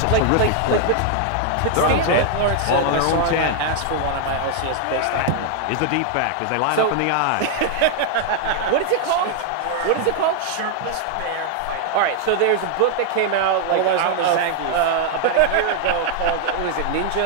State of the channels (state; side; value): different; both; correlation 0.00